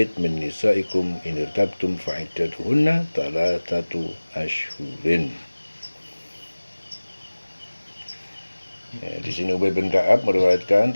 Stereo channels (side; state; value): both; inverted; correlation -1.00